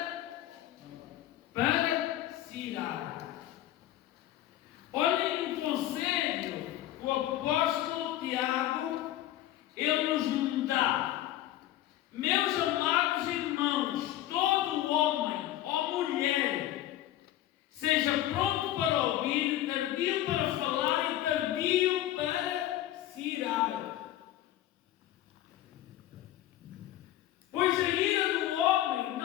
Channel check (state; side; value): quieter; right; 13.6 dB